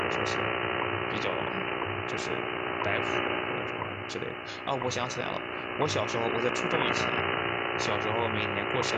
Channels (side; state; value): both; identical; correlation 1.00